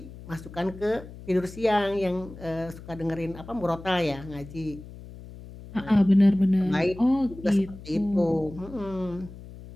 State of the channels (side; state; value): left; noise; hum, 16 dB below the sound